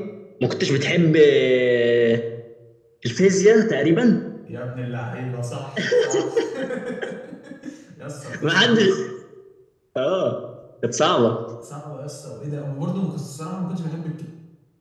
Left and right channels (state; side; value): identical; both; correlation 1.00